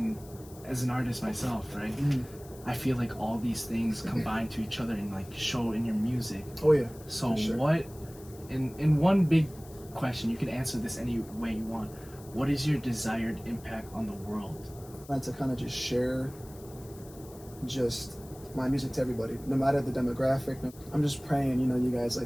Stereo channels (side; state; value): left; noise; hiss, 21 dB below the sound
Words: as an artist myself, right? Mm-hmm. I feel all these things combine to each other and show in your music. Oh yeah. So sure. What, in one big question, you can answer this any way you want. What is your desired impact on the world? I like to kind of just share just my music to everybody, no matter the demographic. I'm just praying, you guys